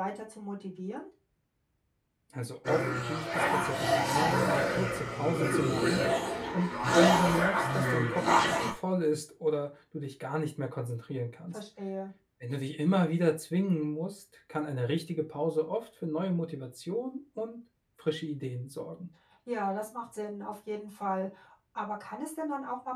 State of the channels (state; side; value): identical; both; correlation 1.00